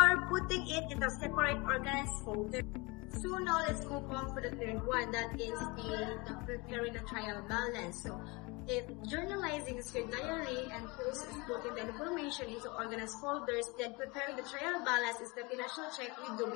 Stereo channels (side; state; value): right; quieter; 26.3 dB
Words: putting it in a separate organized folder. So now let's move on for the third one, that is the preparing the trial balance. So if journalizing is your diary and post is putting the information into organized folders, then preparing the trial balance is the financial check you do